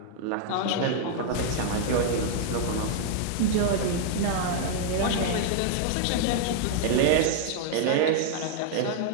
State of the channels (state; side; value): different; both; correlation -0.01